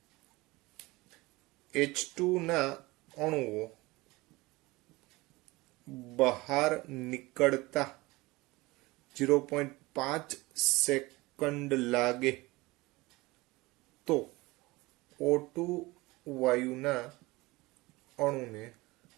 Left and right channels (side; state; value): left; quieter; 21.7 dB